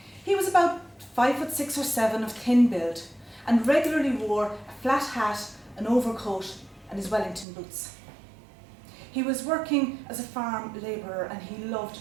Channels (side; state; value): left; drops out; at 7.5 s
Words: He was about 5'6" or 7" of thin build and regularly wore a flat hat, an overcoat and his Wellington boots. He was working as a farm labourer and he loved